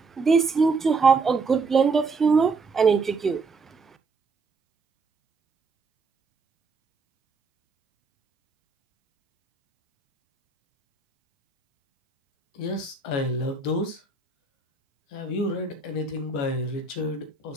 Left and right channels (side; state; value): left; quieter; 4.1 dB